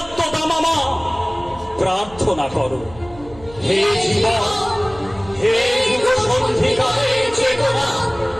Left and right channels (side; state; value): right; noise; hum, 20 dB below the sound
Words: দামামা। প্রার্থনা করো হে জীবন, হে যুগ সন্ধিকালের চেতনা,